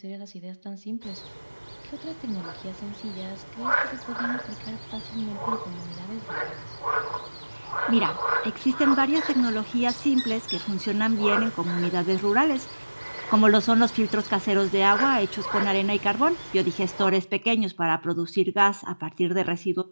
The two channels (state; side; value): inverted; both; correlation -1.00